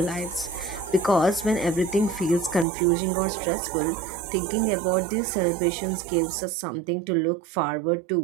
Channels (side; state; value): left; drops out; at 2.7 s